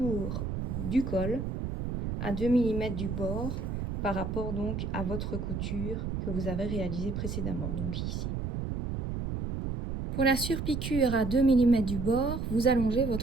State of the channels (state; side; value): noise; right; rumble, 3 dB below the sound